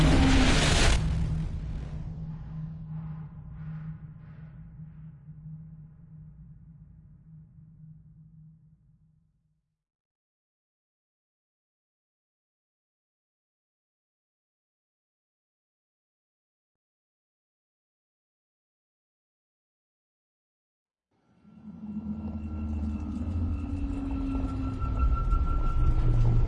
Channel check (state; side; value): identical; both; correlation 1.00